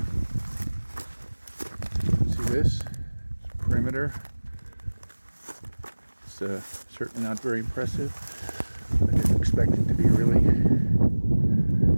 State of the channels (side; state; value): both; inverted; correlation -1.00